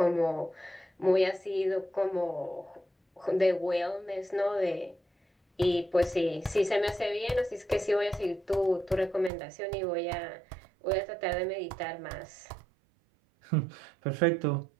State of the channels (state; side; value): drops out; left; at 9.3 s